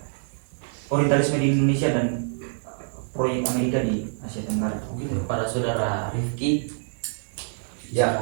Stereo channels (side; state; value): left; silent; digital silence